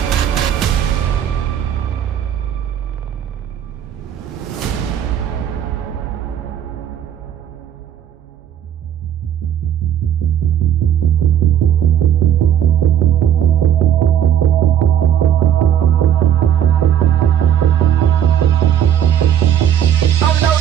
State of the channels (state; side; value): quieter; left; 9.8 dB